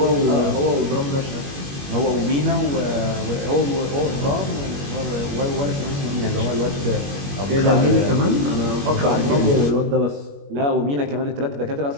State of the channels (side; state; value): left; late; 21 ms